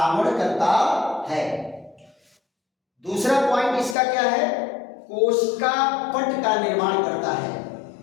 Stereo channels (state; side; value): drops out; right; at 4.0 s